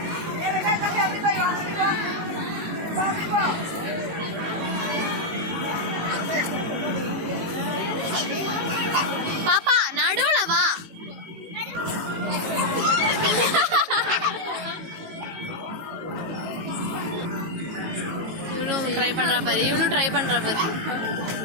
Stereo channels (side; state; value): left; late; 19 ms